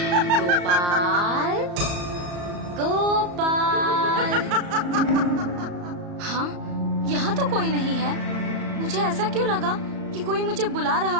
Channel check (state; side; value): late; left; 34 ms